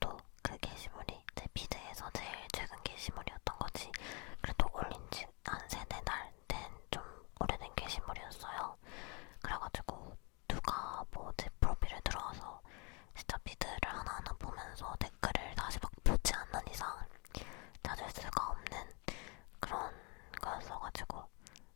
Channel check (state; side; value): quieter; right; 31.4 dB